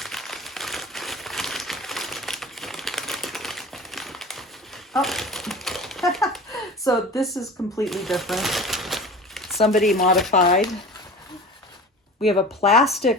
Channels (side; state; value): both; normal; correlation 0.37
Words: Oh, so this is completely different. Somebody modified. We have a